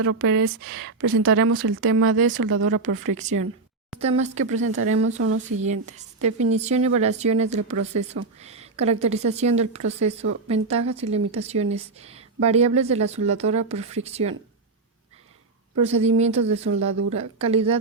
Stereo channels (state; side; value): quieter; left; 3.7 dB